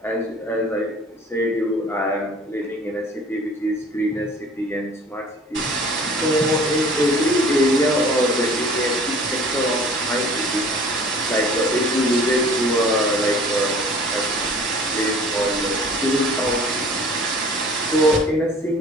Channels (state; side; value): normal; both; correlation 0.48